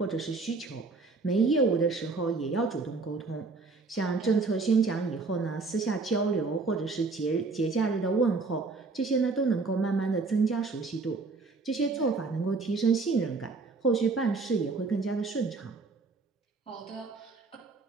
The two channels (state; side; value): quieter; left; 4.0 dB